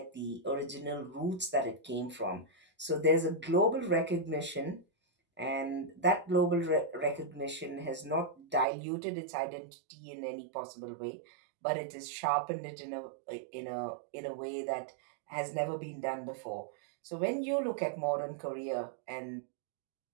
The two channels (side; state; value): left; drops out; at 8.7 s